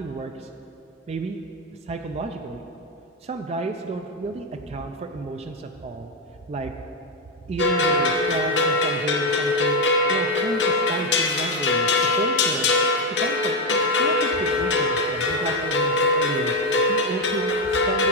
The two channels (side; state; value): both; normal; correlation 0.07